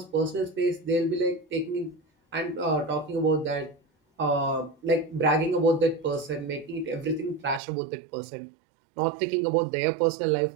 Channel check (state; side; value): drops out; left; at 7.6 s